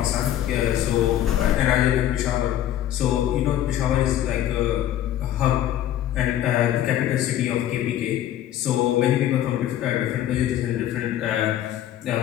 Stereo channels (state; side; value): quieter; right; 12.0 dB